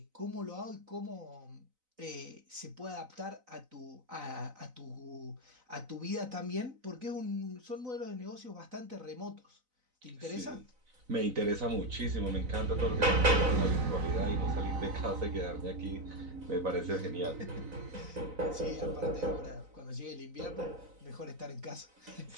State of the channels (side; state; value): left; late; 4.0 ms